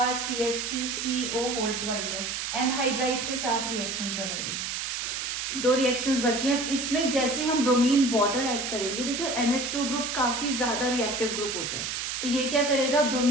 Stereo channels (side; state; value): right; noise; hiss, 3 dB below the sound